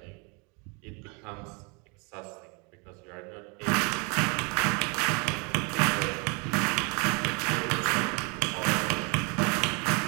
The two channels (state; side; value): quieter; left; 32.0 dB